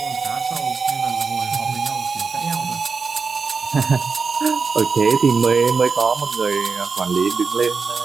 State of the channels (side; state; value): left; quieter; 4.9 dB